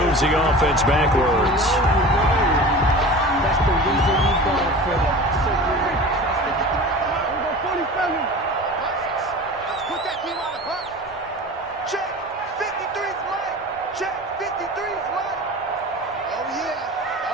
the offense backwards. That's the reason we going for it. Let's put that team on the bus. Check. 53's mine. Check. 53's mine. Oh,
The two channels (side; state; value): both; normal; correlation 0.36